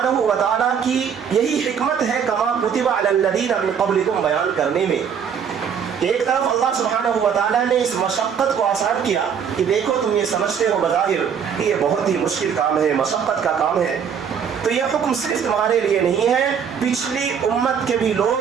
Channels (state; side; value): quieter; left; 7.4 dB